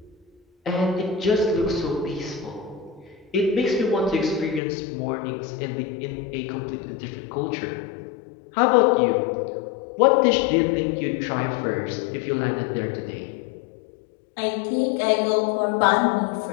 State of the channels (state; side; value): drops out; right; at 4.6 s